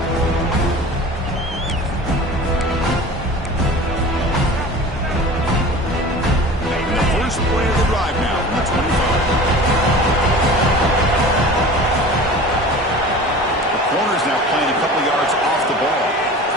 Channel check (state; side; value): normal; both; correlation 0.39